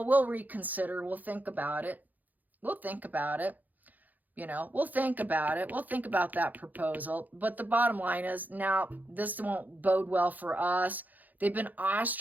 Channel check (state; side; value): late; left; 0.083 ms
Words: we'll reconsider. We'll think about it. We'll think about it. We'll think about it. We'll think about that proposal. But the bottom line is, now this won't bode well for us. They've been